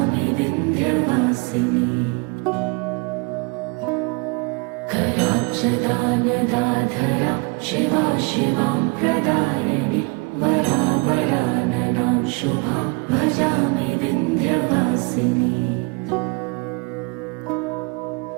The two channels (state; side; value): quieter; left; 30.0 dB